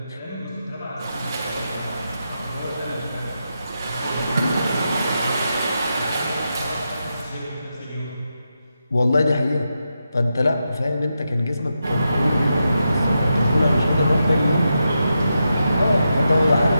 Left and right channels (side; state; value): both; inverted; correlation -0.87